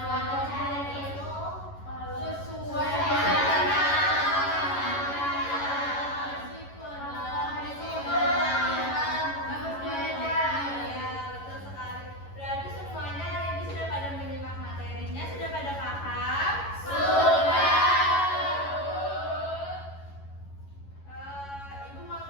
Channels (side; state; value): right; late; 11 ms